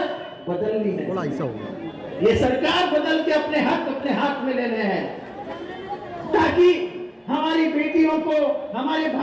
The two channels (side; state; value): both; identical; correlation 1.00